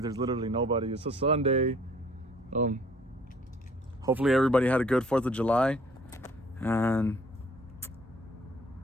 literally nobody. It's a Sunday. Hopefully everybody had a good 4th of July. And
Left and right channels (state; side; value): normal; both; correlation 0.57